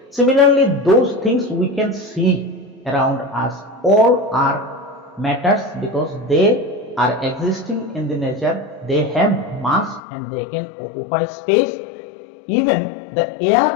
Similarly, those things we can see around us all are matters because they are existing in the nature, they have mass and they can occupy space. Even the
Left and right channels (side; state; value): right; drops out; at 10.0 s